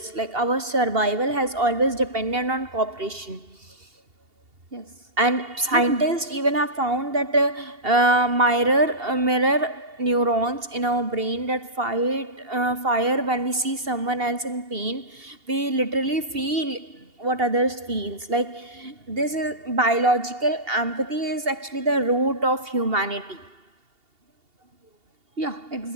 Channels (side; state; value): left; late; 2.8 ms